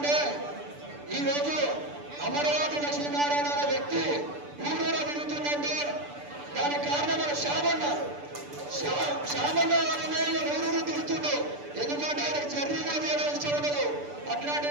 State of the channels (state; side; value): late; left; 6.9 ms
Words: ఈరోజు అమరావతి లక్ష్మీనారాయణ అనే వ్యక్తి ఊరూరా తిరుగుతుందంటే దానికి కారణం మన శ్యామన్న ఊరూరు తిరుగుతుండు. ఎందుకంటే ఆయనకు జర్నీ కూడా చేయడం ఇష్టం ఉండదు.